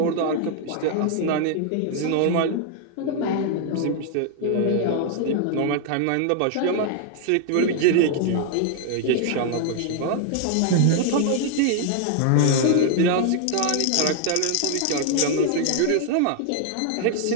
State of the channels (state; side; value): different; both; correlation 0.00